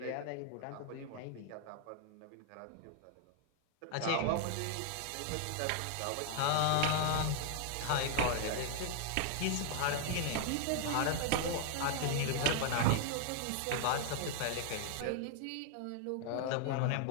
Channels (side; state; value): both; different; correlation 0.00